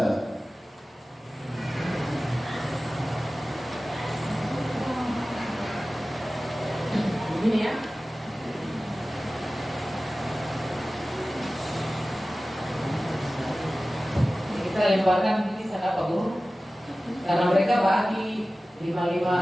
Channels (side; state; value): both; normal; correlation 0.96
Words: Begini ya. kita lemparkan ini sana Pak Guru, karena mereka bagi